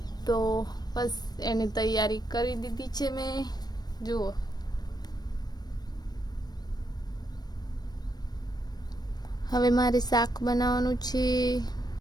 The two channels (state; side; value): late; right; 0.19 ms